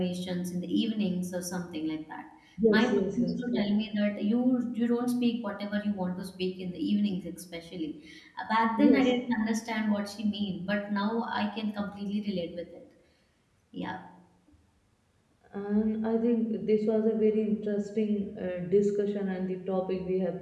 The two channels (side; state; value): both; identical; correlation 1.00